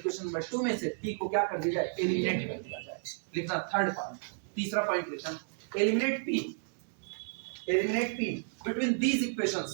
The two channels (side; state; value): left; silent; digital silence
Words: नंबर 2 में से p को क्या कर दिया जाए, एलिमिनेट कर दिया जाए। लिखना थर्ड पॉइंट, तीसरा पॉइंट लिखना, eliminate p between these